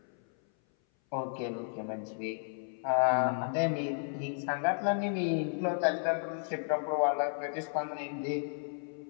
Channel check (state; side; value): silent; right; 56 dB below the other